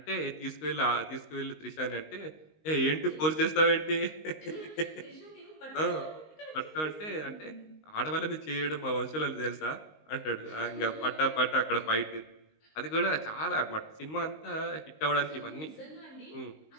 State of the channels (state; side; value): late; right; 19 ms